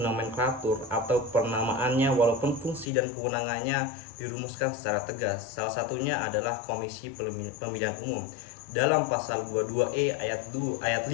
atau penamaannya, walaupun fungsi dan kewenangannya dirumuskan secara tegas. Salah satunya adalah Komisi Pemilihan Umum. Dalam pasal 22E ayat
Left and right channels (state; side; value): drops out; right; at 2.9 s